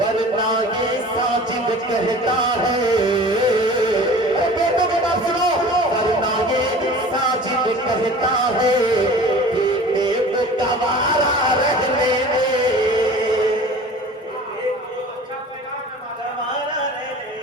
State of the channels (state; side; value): normal; both; correlation 0.42